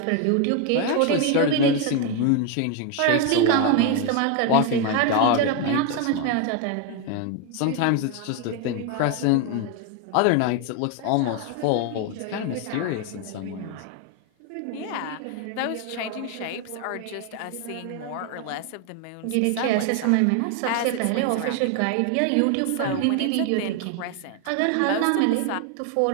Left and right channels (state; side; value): different; both; correlation 0.01